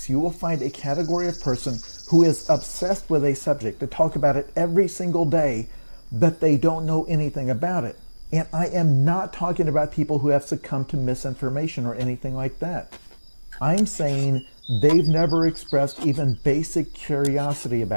you will find a category of person who is obsessed with a subject. They talk about it every single day, but they don't know anything about it. And I am not talking about people who have succumbed to misinformation or anything like that. I'm saying they've never expressed even basic curiosity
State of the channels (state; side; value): inverted; both; correlation -1.00